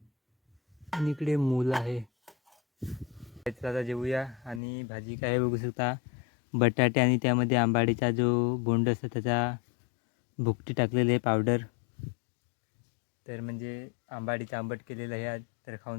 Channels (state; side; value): drops out; right; at 4.6 s